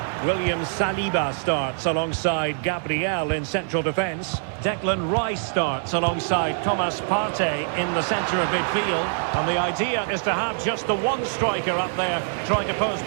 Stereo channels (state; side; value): silent; left; digital silence